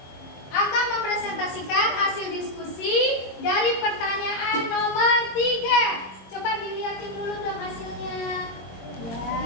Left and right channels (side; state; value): right; late; 22 ms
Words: Akan mempresentasikan hasil diskusi dari pertanyaan nomor 3. Coba dilihatin dulu dong hasilnya.